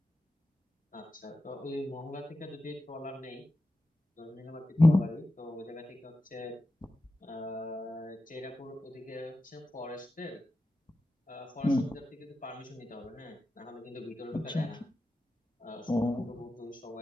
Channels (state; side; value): normal; both; correlation 0.91